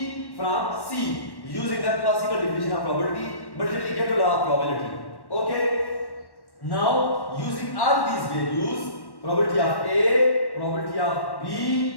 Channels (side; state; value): right; late; 1.1 ms